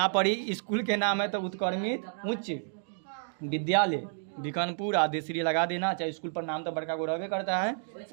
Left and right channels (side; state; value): left; silent; digital silence